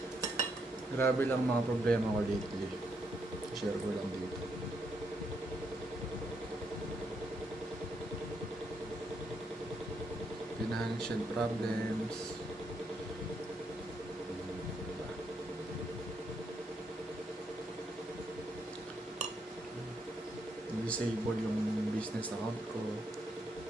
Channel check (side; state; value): both; normal; correlation 0.77